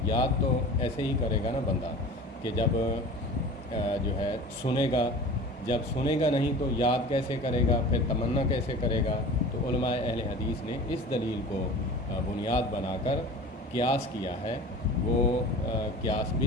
یاد تو ایسے ہی کرے گا نا بندہ کہ جب جو ہے سنے گا، جب سنے گا نہیں تو یاد کیسے کرے گا، پھر تمنا کیسے کرے گا؟ تو علماء اہل حدیث نے اس دلیل کو بنیاد بنا کر قیاس کیا ہے۔ وہ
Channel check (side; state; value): both; normal; correlation 0.38